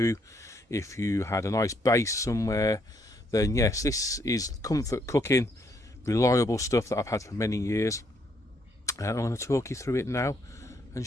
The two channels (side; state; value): both; normal; correlation 0.72